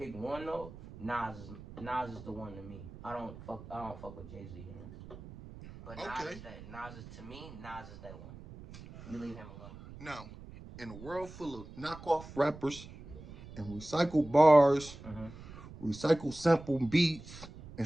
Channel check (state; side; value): noise; right; rumble, 15 dB below the sound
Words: one though, Nas is the one to me. I don't fuck with Jay Z. You know? But Okay. Nas is to me. Nas is that one. You leave him alone. Now, in a world full of knockoff rappers and recycled bars, Mm-hmm. recycled sample beats, and